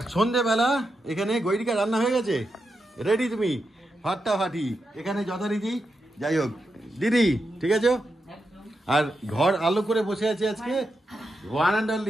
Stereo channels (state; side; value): normal; both; correlation 0.86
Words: সন্ধেবেলা এখানে গৈরিকা রান্না হয়ে গেছে, রেডি তুমি ফাটাফাটি এখানে যথারীতি। যাই হোক দিদি, ঠিক আছে। আর ঘর আলো করে বসে আছে আজকে ওয়ান অ্যান্ড